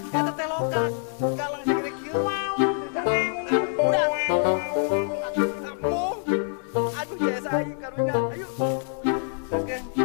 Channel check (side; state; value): right; silent; 61 dB below the other